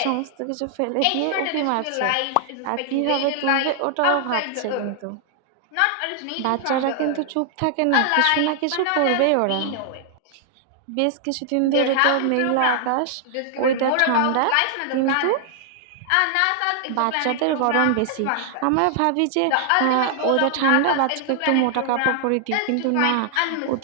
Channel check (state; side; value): different; both; correlation 0.00